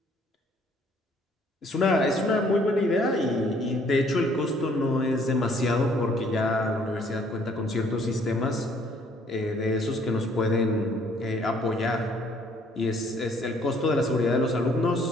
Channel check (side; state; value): both; normal; correlation 0.62